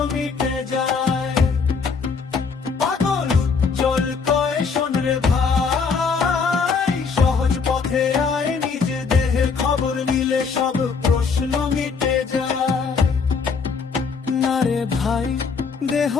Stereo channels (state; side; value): quieter; right; 5.3 dB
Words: মিটে যায়। পাগল উজ্জ্বল কয় শোন রে ভাই, সহজ পথে আয়, নিজ দেহের খবর নিলে সব প্রশ্ন মিটে যায়। না রে ভাই, দেহ